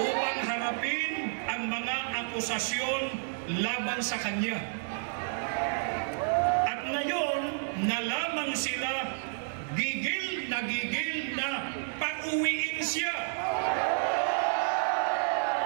harapin ang mga akusasyon laban sa kanya. At ngayon, na lamang sila gigil na pauwiin siya.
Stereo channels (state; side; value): silent; left; digital silence